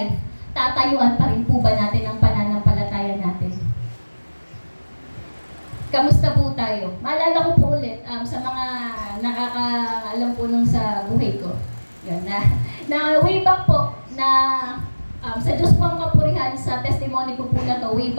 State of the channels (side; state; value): both; inverted; correlation -1.00